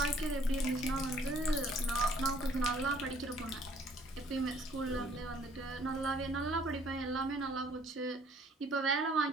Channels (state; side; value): normal; both; correlation 0.59